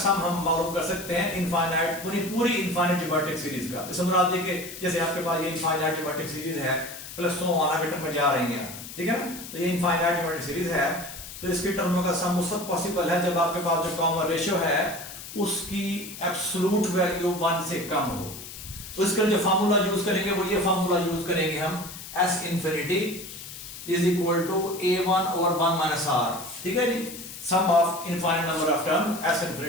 हम मालूम कर सकते हैं इनफाइनाइट, पूरी इनफाइनाइट ज्योमेट्रिक सीरीज का। इस मुराद है कि जैसे आपके पास ये इनफाइनाइट ज्योमेट्रिक सीरीज है प्लस सो ऑन आगे टर्म में जा रही है। ठीक है ना। तो ये इनफाइनाइट ज्योमेट्रिक सीरीज है, तो इसकी टर्मों का सम उस वक्त पॉसिबल है जब आपके पास जो कॉमन रेशियो है उसकी एब्सोल्यूट वैल्यू 1 से कम हो। तो इसके लिए जो फार्मूला यूज करेंगे वो ये फार्मूला यूज करेंगे हम, S infinity is equal to a1 over 1 minus r। ठीक है जी। sum of infinite number of term S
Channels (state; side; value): noise; left; hiss, 12 dB below the sound